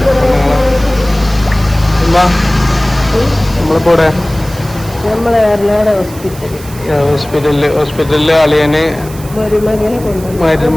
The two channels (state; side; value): noise; right; hiss, 18 dB below the sound